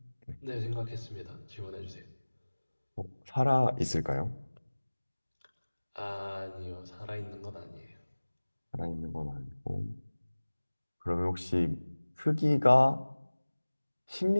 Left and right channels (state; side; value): inverted; both; correlation -1.00